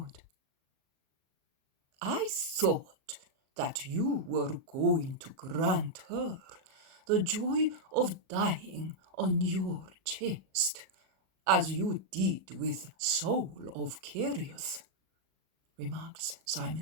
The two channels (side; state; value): left; late; 37 ms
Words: "I thought that you were going to grant her the joy of dying on your chest, as you did with Saul of Kerioth," remarks